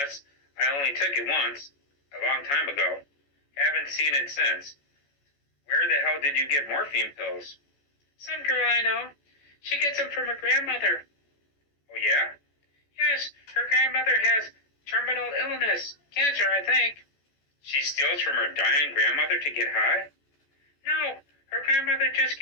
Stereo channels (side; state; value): right; late; 14 ms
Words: I only took it once, a long time ago. Haven't seen it since. Where the hell did you get morphine pills? Some girl I know. She gets them from her grandmother. Oh, yeah? Yes, her grandmother has terminal illness. Cancer, I think. She steals from her dying grandmother to get high? No, her grandmother just